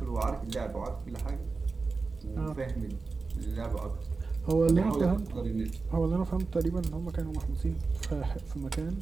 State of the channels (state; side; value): quieter; left; 4.2 dB